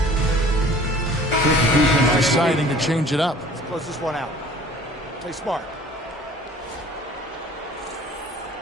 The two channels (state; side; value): normal; both; correlation 0.49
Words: Deciding to change it up. Let's close this one out. Play smart.